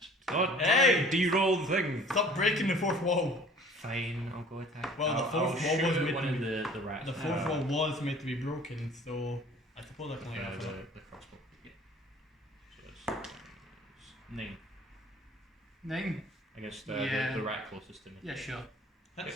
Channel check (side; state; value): both; normal; correlation 0.49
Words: Not Hey! de-roll the thing. Stop breaking the fourth wall. Fine, I'll go attack. Well, the I'll fourth wall shoot was at made one to of be- the rats. The fourth wall was meant to be broken, so I suppose I can like that. the crossbow. Yeah. So it's 9 9. against Yeah. the rat closest to me. Yeah, sure.